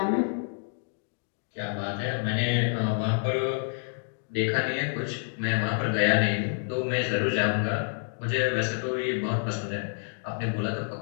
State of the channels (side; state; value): right; silent; digital silence